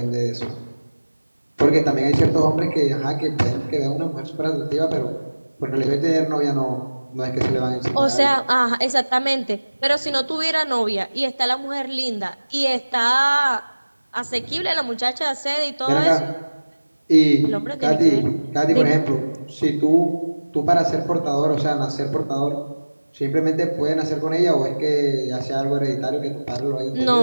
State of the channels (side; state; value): both; inverted; correlation -1.00